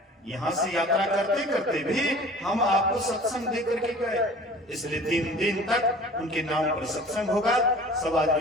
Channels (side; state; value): both; normal; correlation 0.44